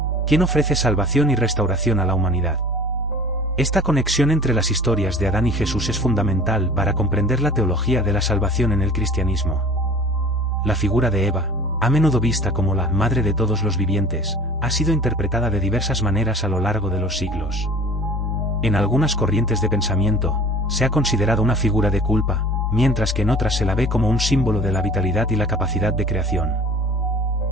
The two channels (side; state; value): both; normal; correlation 0.44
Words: quien ofrece salvación y restauración a la humanidad. Esta conexión entre las historias de Adán y Jesús es fundamental para comprender la teología de la salvación en el cristianismo. La figura de Eva, a menudo vista como la madre de todos los vivientes, ha sido interpretada de diversas maneras a lo largo de los siglos. En algunas corrientes de pensamiento, se ha considerado una figura de culpa, mientras que en otras se la ve como un símbolo de la vitalidad y la capacidad de creación.